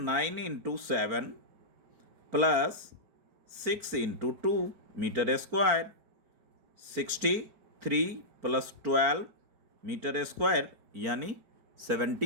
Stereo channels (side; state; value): left; late; 4.5 ms